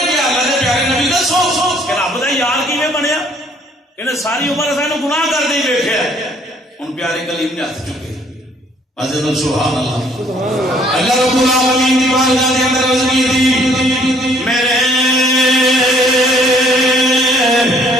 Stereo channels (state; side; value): normal; both; correlation 0.62